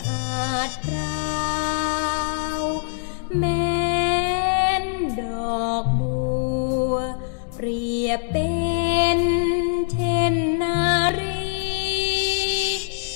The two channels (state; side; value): silent; right; digital silence